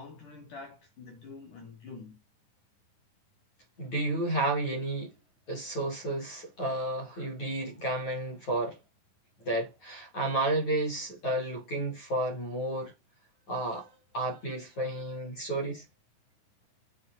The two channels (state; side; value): late; right; 9.3 ms